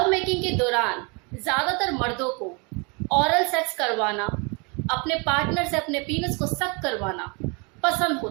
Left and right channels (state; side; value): quieter; left; 32.1 dB